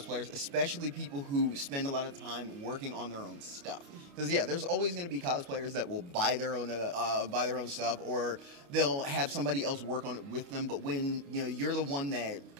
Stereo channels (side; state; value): left; late; 29 ms